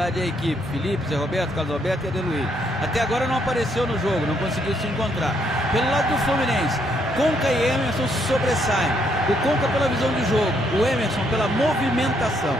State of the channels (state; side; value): normal; both; correlation 0.72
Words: à equipe. Felipe, Zé Roberto, Carlos Alberto e Adeluí. Até agora não apareceu no jogo, não conseguiu se encontrar. Pelo lado do Fluminense, Conca e Emerson se sobressaem. O Conca pela visão de jogo, o Emerson pela movimentação.